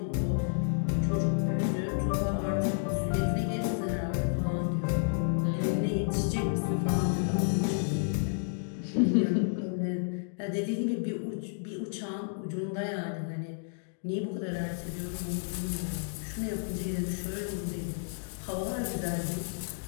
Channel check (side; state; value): right; silent; digital silence